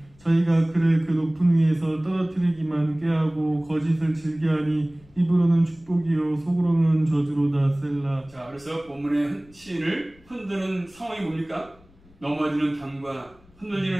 저희가 그를 그 높은 위에서 떨어뜨리기만 꾀하고 거짓을 즐겨하니 입으로는 축복이요 속으로는 저주로다. 셀라. 자, 그래서 본문의 시인을 흔드는 상황이 뭡니까? 넘어지는 담과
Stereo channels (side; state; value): left; noise; rumble, 28 dB below the sound